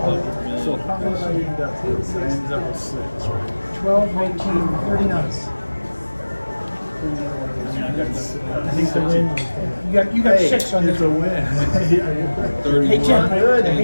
So million. how much I ended up with? I ended up with 6, right? 12, 19, 39. I mean, I got I think the win. You got 6 on It's this. a win. 31. Hey, Tim, I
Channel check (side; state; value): both; inverted; correlation -1.00